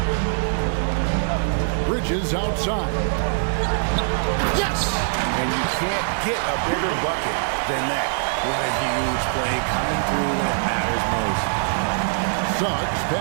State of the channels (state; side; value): silent; left; 64 dB below the other